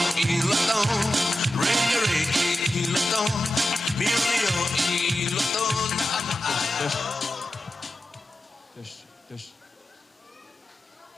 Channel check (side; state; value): both; normal; correlation 0.92